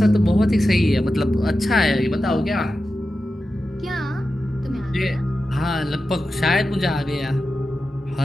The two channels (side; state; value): both; normal; correlation 0.92